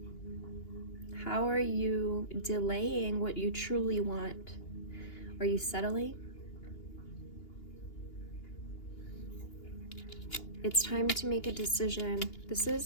How are you delaying what you truly want? Are you settling? It's time to make a decision. This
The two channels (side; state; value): right; late; 2.8 ms